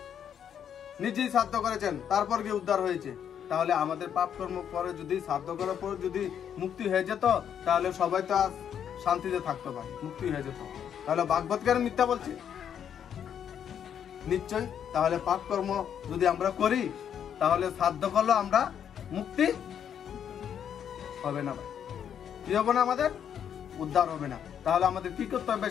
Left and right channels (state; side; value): quieter; right; 8.7 dB